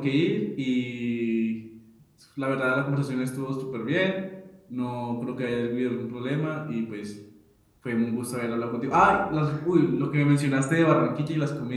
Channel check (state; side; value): identical; both; correlation 1.00